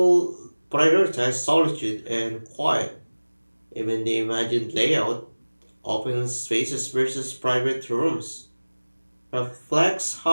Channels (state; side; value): inverted; both; correlation -1.00